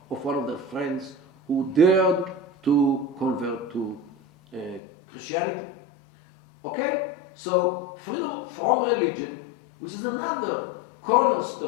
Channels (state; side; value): drops out; right; at 4.8 s